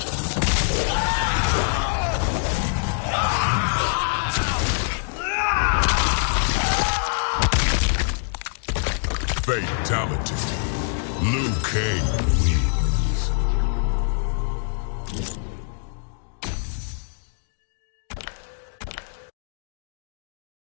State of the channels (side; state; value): right; silent; digital silence